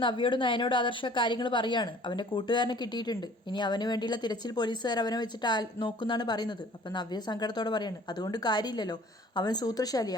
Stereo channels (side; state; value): both; normal; correlation 0.51